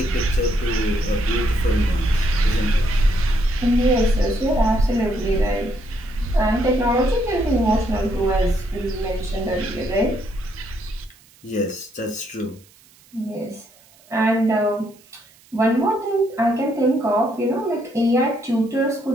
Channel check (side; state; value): right; noise; hiss, 28 dB below the sound